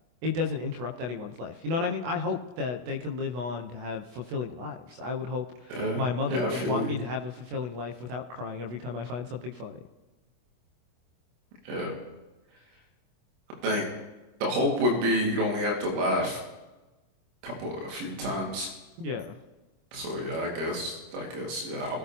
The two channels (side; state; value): left; late; 25 ms